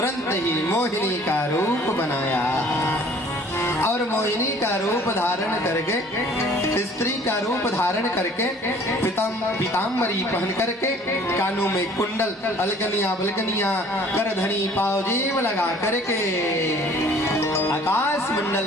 ही मोहिनी का रूप बनाया और मोहिनी का रूप धारण करके, स्त्री का रूप धारण करके, पीताम्बरी पहन करके, कानों में कुंडल, अलगनिया बलगनिया, करधनी पावजेब लगा करके आकाश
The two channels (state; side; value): normal; both; correlation 0.53